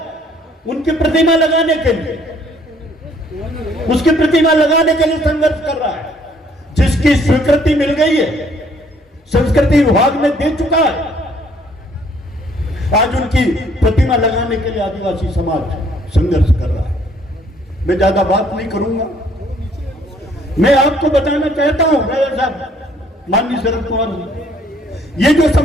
उनकी प्रतिमा लगाने के लिए, उसकी प्रतिमा लगाने के लिए संघर्ष कर रहा है, जिसकी स्वीकृति मिल गई है, संस्कृति विभाग ने दे चुका है। आज उनकी प्रतिमा लगाने के लिए आदिवासी समाज संघर्ष कर रहा है। मैं ज्यादा बात नहीं करूंगा, मैं आपको बताना चाहता हूं राजा साहब, माननीय शरद पवार जी, ये जो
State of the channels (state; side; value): normal; both; correlation 0.62